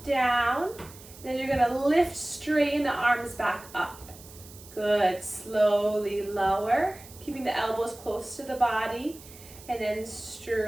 down. Then you're going to lift, straighten the arms back up. Good. Slowly lower, keeping the elbows close to the body. And then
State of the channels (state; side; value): noise; right; hiss, 19 dB below the sound